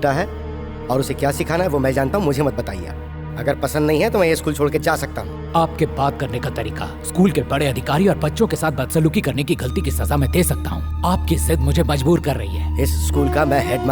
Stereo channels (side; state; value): both; identical; correlation 1.00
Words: है और उसे क्या सिखाना है वो मैं जानता हूँ, मुझे मत बताइए। अगर पसंद नहीं है तो मैं ये स्कूल छोड़ के जा सकता हूँ। आपके बात करने का तरीका, स्कूल के बड़े अधिकारी और बच्चों के साथ बदसलूकी करने की गलती की सजा मैं दे सकता हूँ। आपकी जिद मुझे मजबूर कर रही है। इस स्कूल का मैं